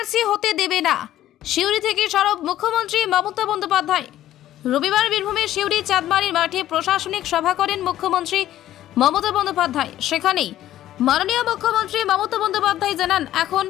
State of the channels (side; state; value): right; quieter; 13.1 dB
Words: হতে দেবে না, সিউড়ি থেকে সরব মুখ্যমন্ত্রী মমতা বন্দ্যোপাধ্যায়। রবিবার বীরভূমের সিউড়ি চাঁদমারির মাঠে প্রশাসনিক সভা করেন মুখ্যমন্ত্রী মমতা বন্দ্যোপাধ্যায়। সেখানেই মাননীয় মুখ্যমন্ত্রী মমতা বন্দ্যোপাধ্যায় জানান, এখন